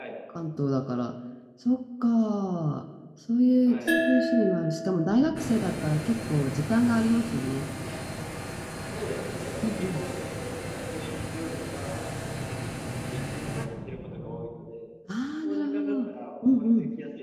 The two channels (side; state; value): both; identical; correlation 1.00